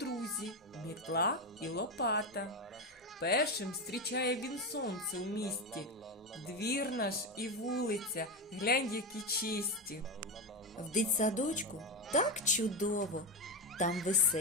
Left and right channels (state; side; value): normal; both; correlation 0.14